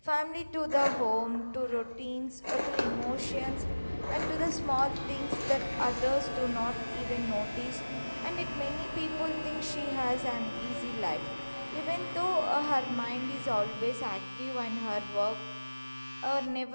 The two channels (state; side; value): inverted; both; correlation -1.00